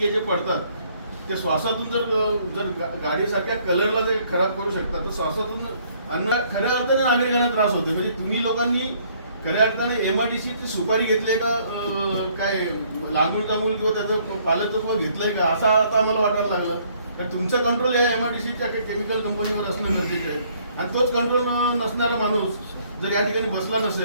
जे पडतात ते श्वासातून जर गाडीसारख्या कलरला ते खराब करू शकतात, तर श्वासातून खऱ्या अर्थाने नागरिकांना त्रास होते. म्हणजे तुम्ही लोकांनी खऱ्या अर्थाने MRDCची सुपारी घेतली का, काय लागूळ तामूळ किंवा त्याचं पालकत्व घेतलंय का, असं आता आम्हाला वाटायला लागलं. कारण तुमचं कंट्रोल या MRDCच्या केमिकल कंपनीवर असणं गरजेचं आहे. आणि तोच कंट्रोल नसणारा माणूस जर या ठिकाणी बसला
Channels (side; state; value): both; inverted; correlation -0.64